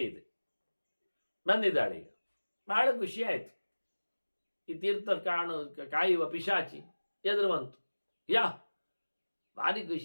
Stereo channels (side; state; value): both; inverted; correlation -1.00